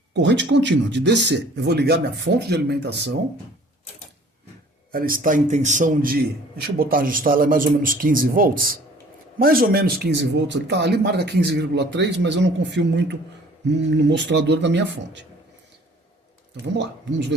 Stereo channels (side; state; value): both; normal; correlation 0.53